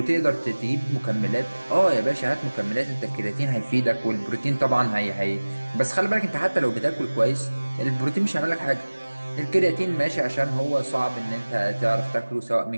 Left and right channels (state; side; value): inverted; both; correlation -1.00